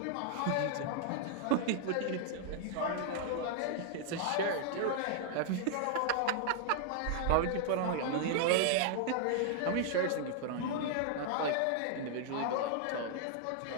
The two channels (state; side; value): different; both; correlation -0.01